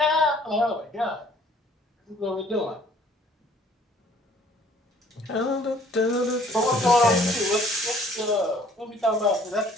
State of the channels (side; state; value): both; normal; correlation 0.57